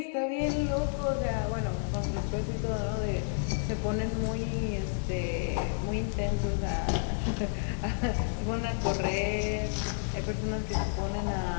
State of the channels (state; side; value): silent; right; digital silence